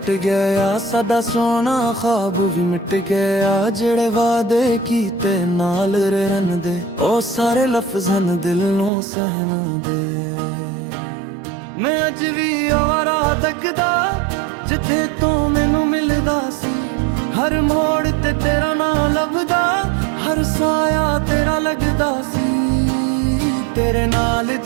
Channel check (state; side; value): drops out; left; at 8.9 s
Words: गया सदा सोना ख्वाब भी मिट गया जेड़े वादे कीते नाल रहन दे ओ सारे लफ्ज़न दिल नू सहन दे मैं अज भी आवारा तकदा जिथे तू मैनू मिलदा सी हर मोड़ ते तेरा ना लभदा हर साया तेरा लगदा सी तेरे नाल